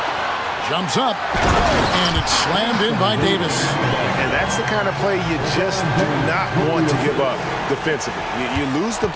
Jumps up, and it's slammed in by Davis. And that's the kind of play you just do not want to give up defensively. You lose the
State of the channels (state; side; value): identical; both; correlation 1.00